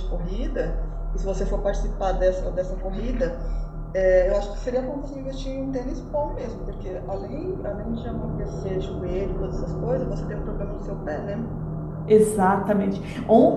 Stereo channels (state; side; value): identical; both; correlation 1.00